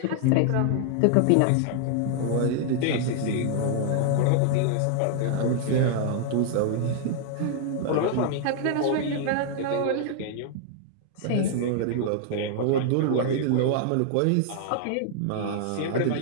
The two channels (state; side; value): different; both; correlation 0.00